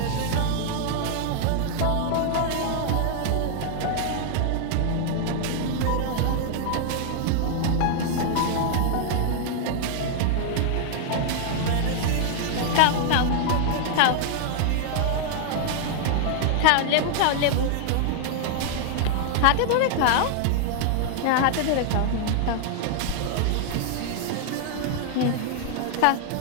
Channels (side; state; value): both; different; correlation -0.01